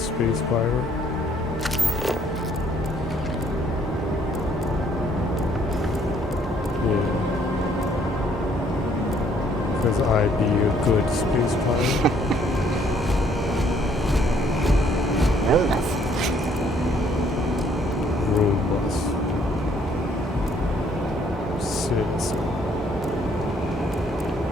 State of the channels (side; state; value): both; normal; correlation 0.64